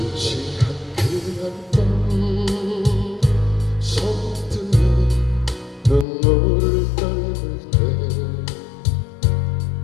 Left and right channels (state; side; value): drops out; right; at 6.1 s